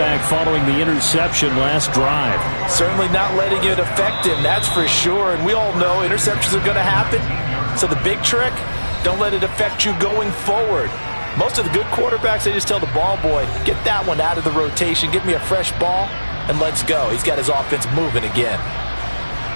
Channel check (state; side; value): inverted; both; correlation -1.00